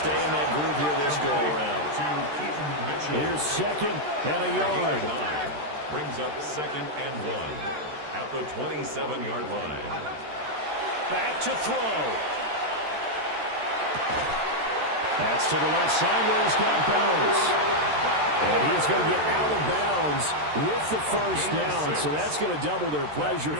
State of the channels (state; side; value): late; left; 13 ms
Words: in that groove here this go-around. Here's second and a yard. Brings up second and 1 at the 27-yard line. Back to throw. That's to the left side where he's got balance. And he's going to get out of bounds with the first down. So that's going to double their pleasure